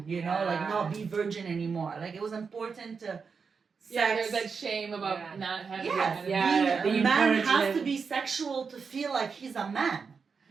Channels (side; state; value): left; quieter; 5.4 dB